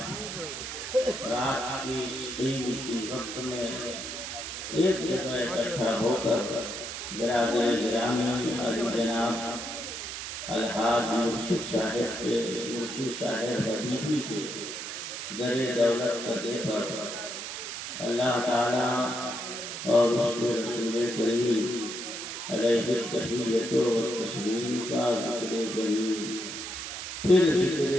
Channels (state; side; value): noise; right; hiss, 7 dB below the sound